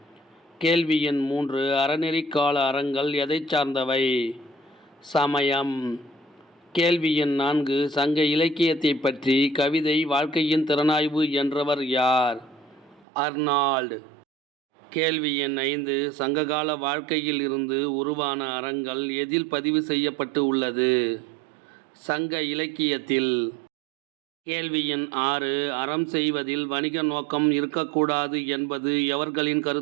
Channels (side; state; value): left; drops out; at 13.1 s